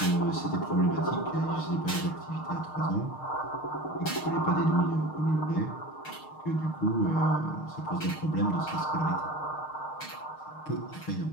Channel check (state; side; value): late; right; 6.5 ms